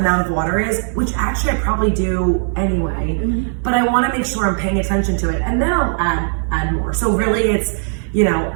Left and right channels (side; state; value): left; silent; 66 dB below the other